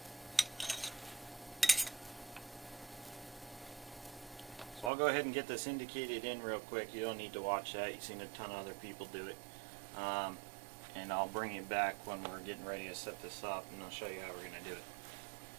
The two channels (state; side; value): drops out; left; at 4.9 s